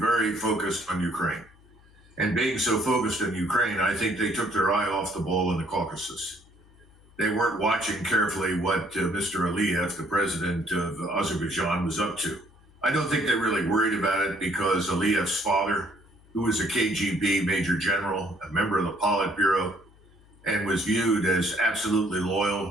focused on Ukraine. And being so focused on Ukraine, I think they took their eye off the ball in the Caucasus. They weren't watching carefully what Mr. Aliyev, the president of Azerbaijan, was up to. I don't think they really worried about it because Aliyev's father, who was a KGB major general, a member of the Politburo, and was viewed as absolutely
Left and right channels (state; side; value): noise; left; hum, 27 dB below the sound